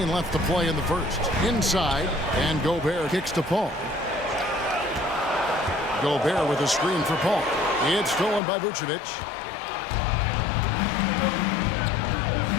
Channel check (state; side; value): drops out; right; at 8.4 s